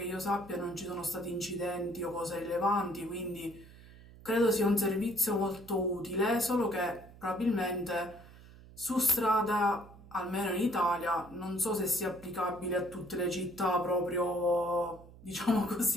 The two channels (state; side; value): noise; right; hum, 20 dB below the sound